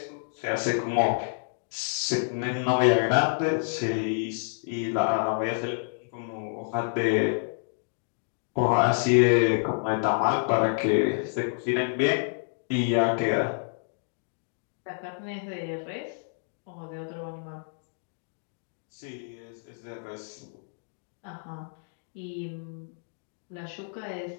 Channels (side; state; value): right; silent; digital silence